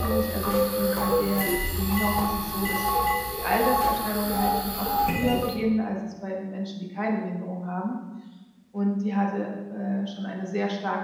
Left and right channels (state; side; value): identical; both; correlation 1.00